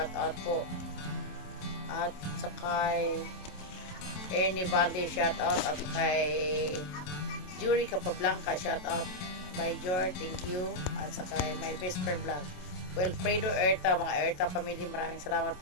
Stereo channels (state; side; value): late; right; 27 ms